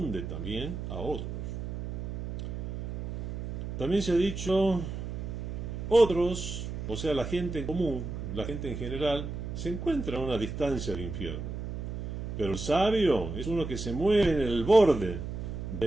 también a otros. También se ha dicho, otros, o sea, la gente en común, la gente en general, se encuentra a una distancia del infierno. Pero el sabio es uno que se mueve en el borde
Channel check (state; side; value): noise; right; hum, 6 dB below the sound